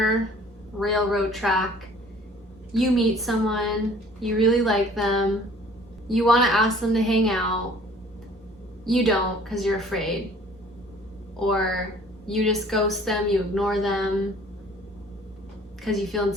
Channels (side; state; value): both; normal; correlation 0.52